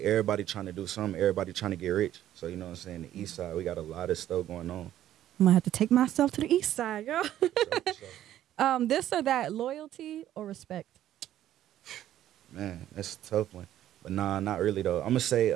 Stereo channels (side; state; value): left; quieter; 12.3 dB